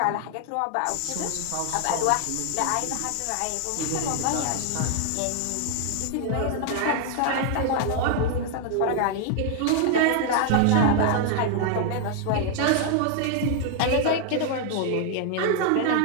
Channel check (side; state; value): both; different; correlation 0.00